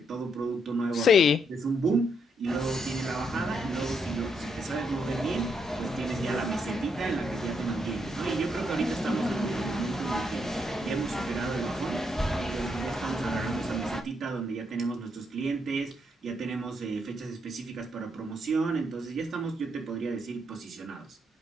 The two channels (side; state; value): both; normal; correlation 0.77